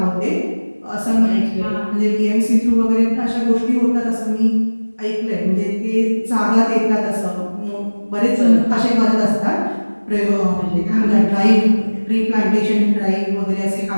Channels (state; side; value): inverted; both; correlation -1.00